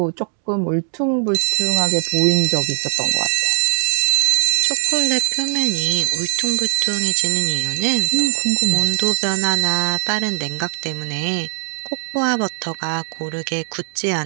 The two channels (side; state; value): left; silent; 62 dB below the other